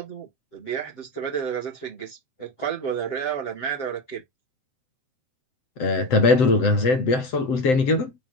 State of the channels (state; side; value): late; right; 7.8 ms